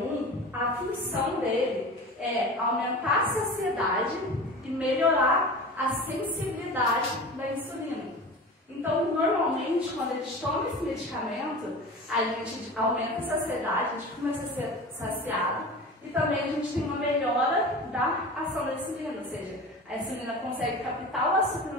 a função dele é aumentar a saciedade e melhorar a sensibilidade da insulina. Então, normalmente, quando a gente toma esse medicamento, a gente aumenta a saciedade, a gente começa a ser saciado e também a gente tem uma melhora da ação da insulina, ou seja, a insulina consegue captar o açúcar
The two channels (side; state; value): both; normal; correlation 0.34